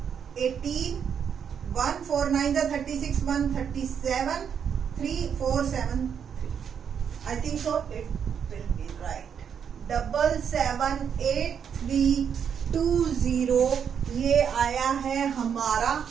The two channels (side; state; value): left; quieter; 7.7 dB